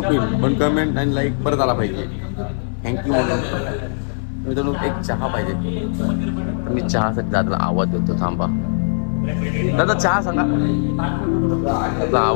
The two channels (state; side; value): silent; right; 59 dB below the other